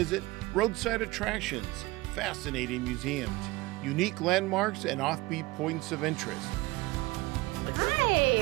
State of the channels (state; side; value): quieter; left; 21.4 dB